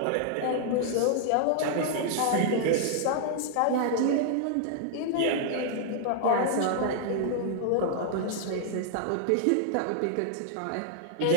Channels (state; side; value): different; both; correlation -0.01